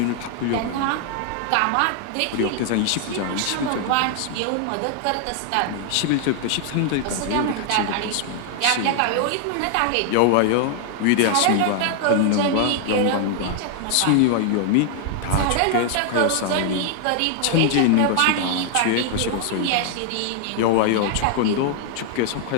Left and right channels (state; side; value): different; both; correlation 0.00